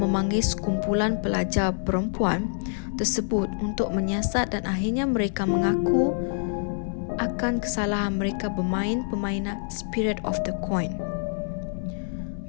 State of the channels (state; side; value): silent; right; 61 dB below the other